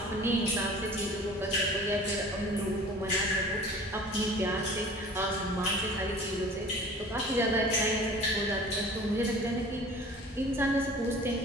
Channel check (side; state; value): both; normal; correlation 0.44